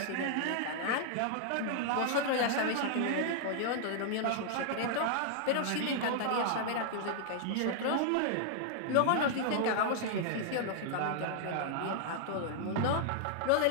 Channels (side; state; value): both; different; correlation -0.01